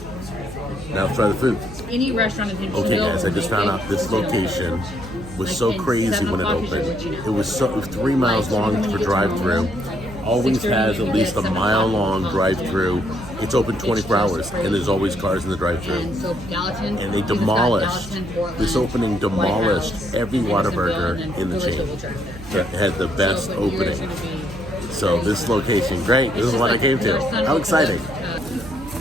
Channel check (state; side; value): noise; right; hum, 15 dB below the sound